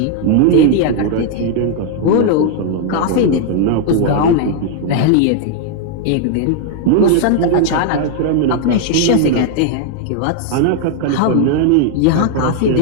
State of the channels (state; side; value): different; both; correlation 0.00